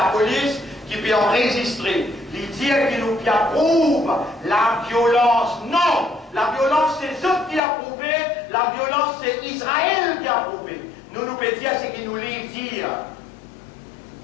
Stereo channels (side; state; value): right; drops out; at 7.6 s